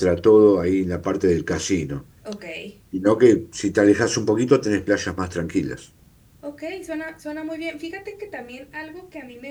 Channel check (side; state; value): both; identical; correlation 1.00